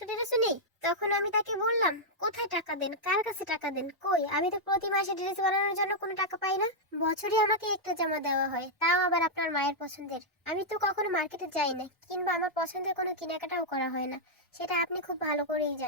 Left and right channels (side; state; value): both; normal; correlation -0.05